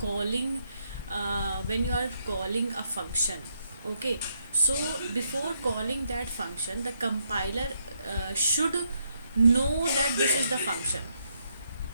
a function. Okay, so before calling that function, the compiler should know that this is the function,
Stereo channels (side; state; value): both; inverted; correlation -0.77